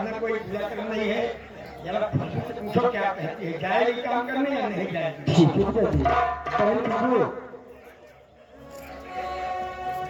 कोई बुरा करना नहीं है। जरा खुशबू से पूछो क्या कहती है, जाएगी काम करने या नहीं जाएगी? ठीक है पिताजी। बहन खुशबू,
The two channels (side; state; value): both; identical; correlation 1.00